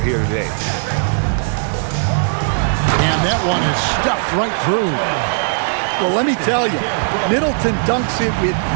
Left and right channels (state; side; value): silent; left; digital silence